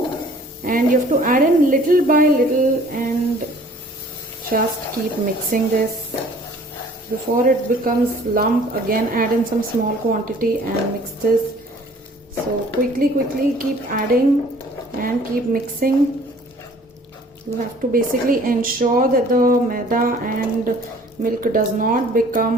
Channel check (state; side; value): normal; both; correlation 0.53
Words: and you have to add in little by little and just keep mixing this. Before it becomes lump, again add in some small quantity and mix this. So quickly keep adding and keep mixing. You have to basically ensure that the maida and milk does not